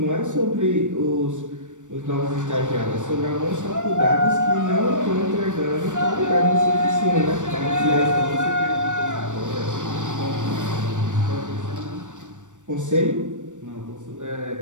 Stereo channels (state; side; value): late; left; 0.85 ms